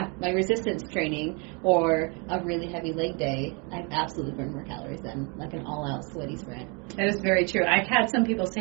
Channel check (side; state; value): left; quieter; 33.3 dB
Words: my resistance training or a really heavy leg day, I've absolutely burned more calories than like an all-out sweaty sprint. That is very true. I've had some people